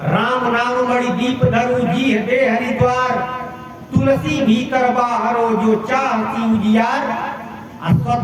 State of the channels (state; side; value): identical; both; correlation 1.00